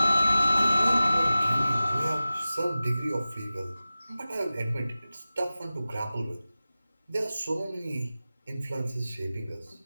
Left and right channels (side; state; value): both; inverted; correlation -0.95